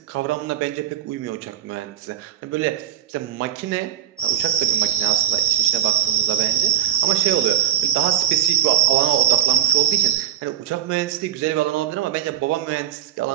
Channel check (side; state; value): left; quieter; 10.8 dB